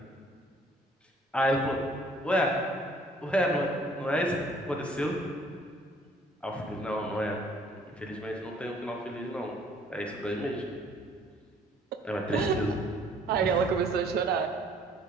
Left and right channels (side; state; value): both; normal; correlation 0.59